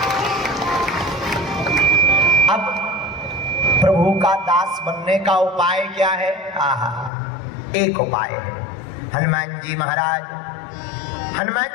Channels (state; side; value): drops out; right; at 7.1 s